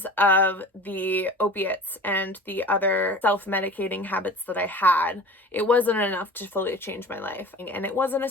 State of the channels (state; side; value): normal; both; correlation 0.40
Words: of the opiates and the other self-medicating habits that I had, it wasn't enough to fully change my life. And it wasn't a